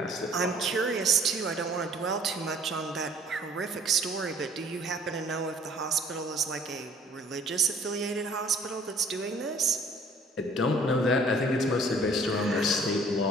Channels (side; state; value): both; normal; correlation 0.55